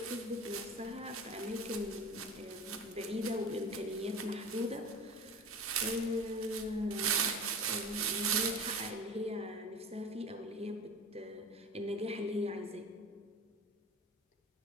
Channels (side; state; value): both; normal; correlation 0.35